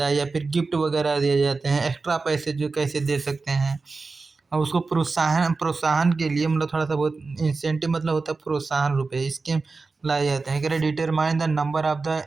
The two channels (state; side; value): quieter; left; 4.0 dB